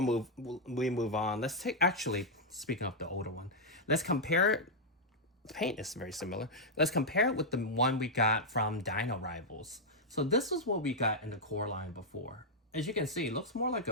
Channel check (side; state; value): both; normal; correlation -0.04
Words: we move on, let's take, actually, speaking of the older one, let's compare it. The paint is very similar. Let's compare it with the one we got from Dino Rivals. So this is what we got in the core line before. As you can see, it looks more like